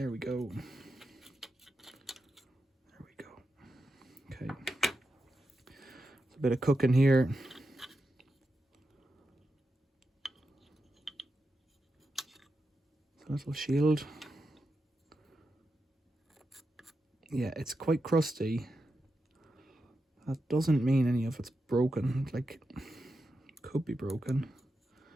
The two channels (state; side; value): normal; both; correlation 0.88